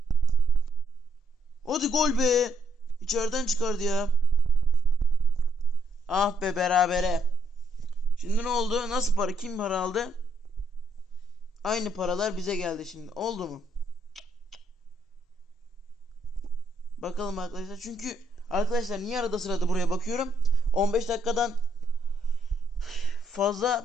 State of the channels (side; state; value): both; normal; correlation 0.72